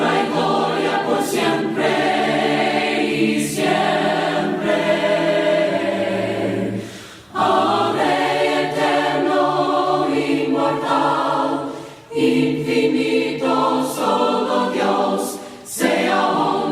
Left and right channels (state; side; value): identical; both; correlation 1.00